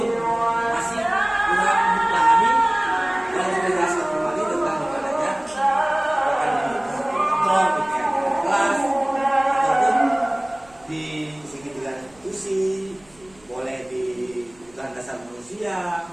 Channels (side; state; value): right; noise; rumble, 29 dB below the sound